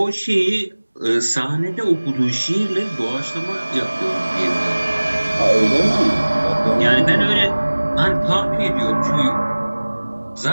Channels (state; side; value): inverted; both; correlation -1.00